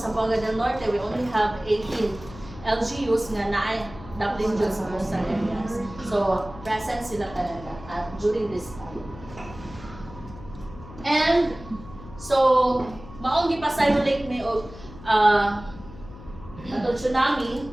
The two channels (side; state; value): left; noise; hum, 16 dB below the sound